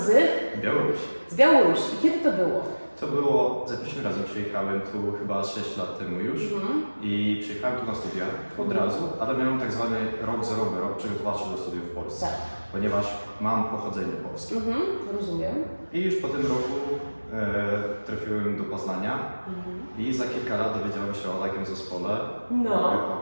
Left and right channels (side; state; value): both; inverted; correlation -1.00